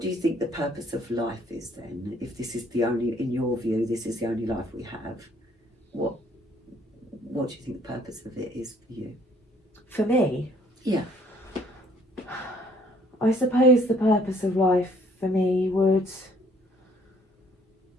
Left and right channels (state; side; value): normal; both; correlation 0.61